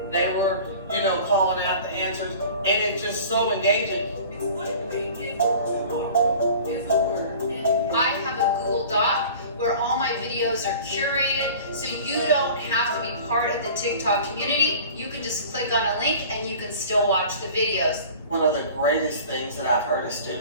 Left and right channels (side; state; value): both; inverted; correlation -0.42